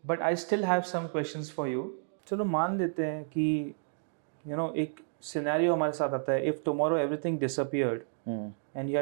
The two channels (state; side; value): silent; left; digital silence